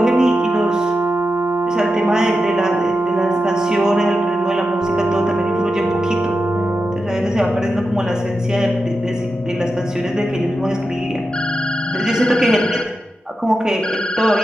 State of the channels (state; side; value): normal; both; correlation 0.90